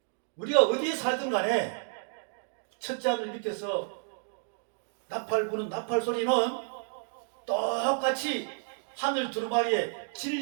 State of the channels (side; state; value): left; silent; digital silence